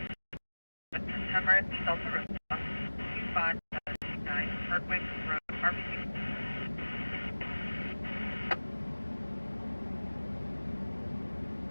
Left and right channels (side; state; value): both; inverted; correlation -1.00